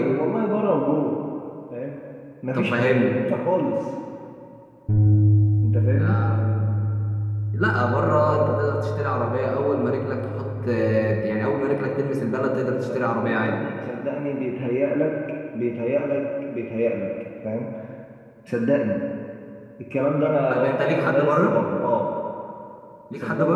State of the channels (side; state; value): both; identical; correlation 1.00